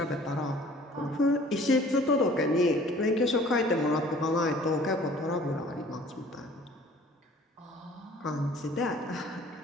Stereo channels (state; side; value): normal; both; correlation 0.51